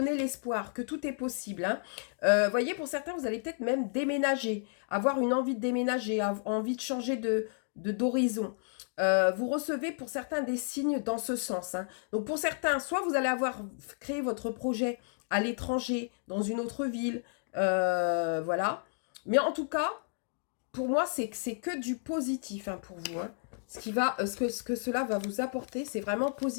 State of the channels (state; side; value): silent; right; digital silence